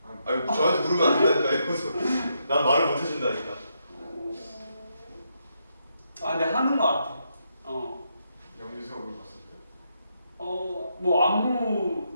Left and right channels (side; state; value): both; inverted; correlation -0.80